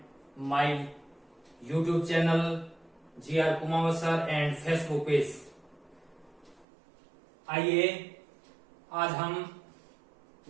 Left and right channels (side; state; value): left; drops out; at 6.7 s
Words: my YouTube channel J.R. Kumawat sir and Facebook page. आइए आज हम